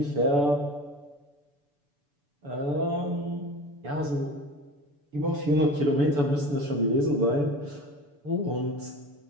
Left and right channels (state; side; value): late; left; 6.9 ms